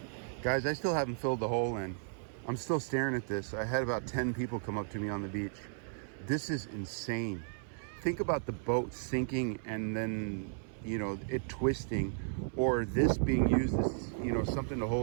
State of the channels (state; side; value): silent; left; 55 dB below the other